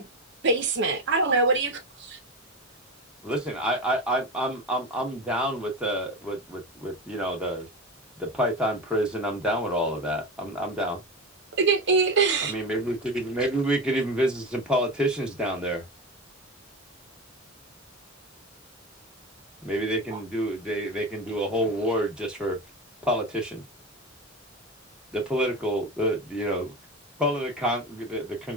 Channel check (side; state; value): both; normal; correlation 0.23